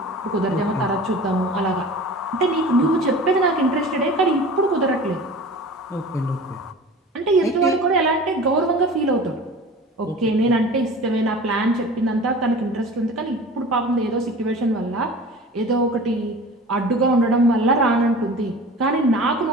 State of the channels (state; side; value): normal; both; correlation 0.39